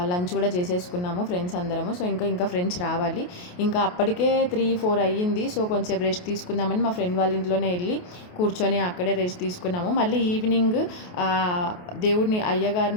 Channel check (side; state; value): right; late; 28 ms